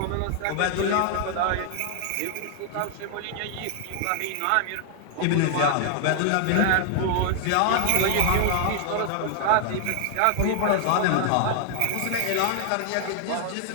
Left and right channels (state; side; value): different; both; correlation 0.00